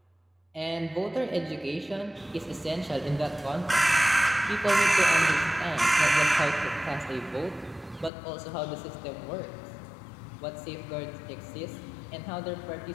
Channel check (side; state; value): right; drops out; at 8.1 s